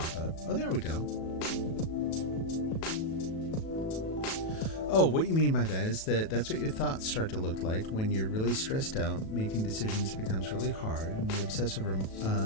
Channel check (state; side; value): late; right; 37 ms